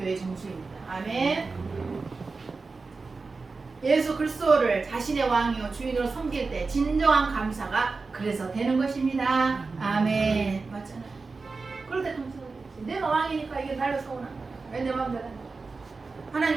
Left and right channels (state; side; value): quieter; left; 4.1 dB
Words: 정수입니다. 아멘. 예수 그리스도를 자신의 왕이요 주인으로 섬길 때 진정한 감사가 그래서 되는 것입니다. 아멘. 맞잖아요. 그럴 때 감사가 되지. 내가 왕이니까 이게 날로 서운한 거야. 왜 내 마음대로 안 돼? 하나님